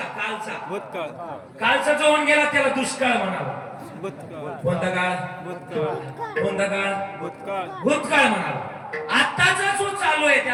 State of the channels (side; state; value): both; identical; correlation 1.00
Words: भूतकाळ. कालचा जो होऊन गेला त्याला दुष्काळ म्हणावा. कोणता काळ? कोणता काळ? भूतकाळ म्हणावा. आताचा जो चालू आहे